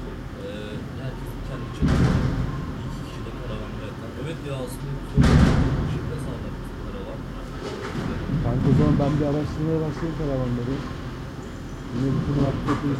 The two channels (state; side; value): identical; both; correlation 1.00